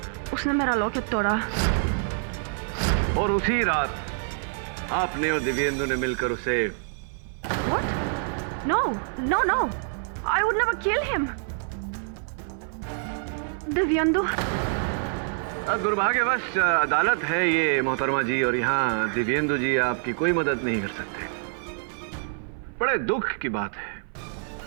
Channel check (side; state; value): left; silent; 55 dB below the other